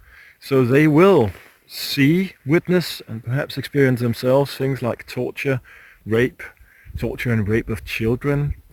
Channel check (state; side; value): identical; both; correlation 1.00